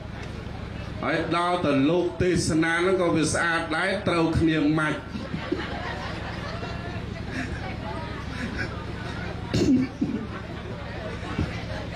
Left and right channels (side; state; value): both; identical; correlation 1.00